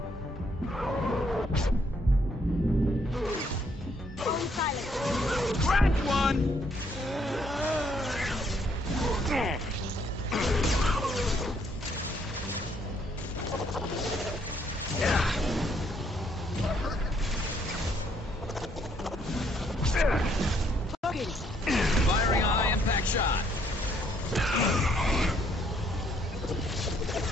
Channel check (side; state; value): both; normal; correlation 0.69